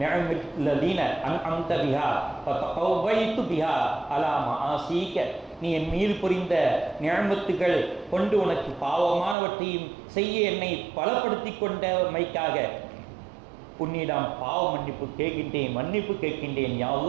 நிஅமில்லதீன அன்அம்த பிஹா ஃபதகவைது பிஹா அலா மஆசீக. நீ என் மீது புரிந்த நிஅமத்துகள் கொண்டு உனக்கு பாவமானவற்றையும் செய்ய என்னை பலப்படுத்தி கொண்டமைக்காக உன்னிடம் பாவ மன்னிப்பு கேட்கின்றேன், மன்னிப்பு கேட்கின்றேன். யா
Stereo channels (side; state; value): left; drops out; at 9.3 s